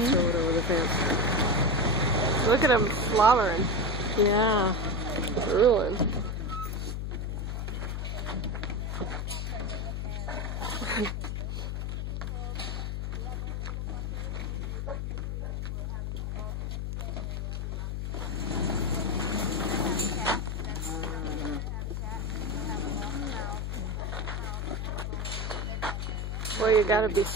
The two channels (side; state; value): left; noise; hum, 2 dB below the sound